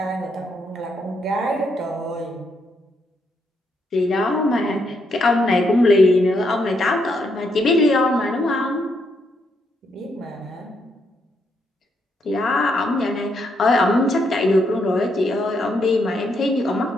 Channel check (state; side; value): normal; both; correlation 0.77